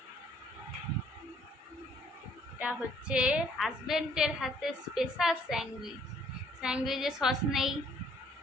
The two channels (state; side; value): normal; both; correlation 0.63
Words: এটা হচ্ছে হাজবেন্ডের হাতে স্পেশাল স্যান্ডউইচ, স্যান্ডউইচে সস নেই।